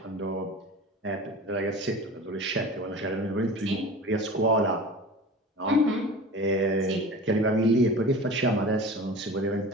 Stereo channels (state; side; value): normal; both; correlation 0.36